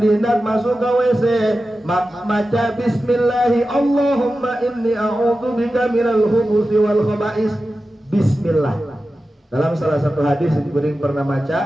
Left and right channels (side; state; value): both; normal; correlation 0.93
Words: hendak masuk ke WC maka baca bismillah Allahumma inni a'udzu bika minal khubsi wal khaba'is bismillah dalam salah satu hadis yang pernah baca